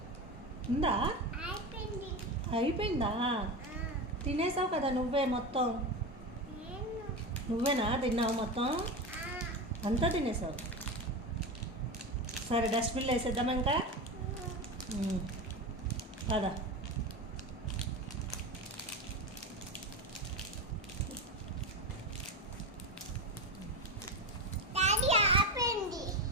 ఉందా? అయిపోయిందా? తినేసావు కదా నువ్వే మొత్తం. నువ్వేనా తిన్నావు మొత్తం? అంతా తినేసావు. సరే డస్ట్బిన్లో వేసేద్దామా ఇంకా? పదా.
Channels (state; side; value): normal; both; correlation 0.21